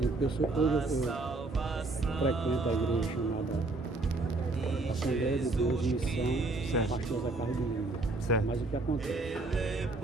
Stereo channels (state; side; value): quieter; left; 3.2 dB